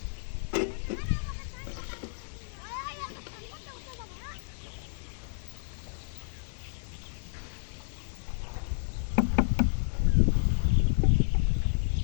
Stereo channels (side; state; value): right; silent; digital silence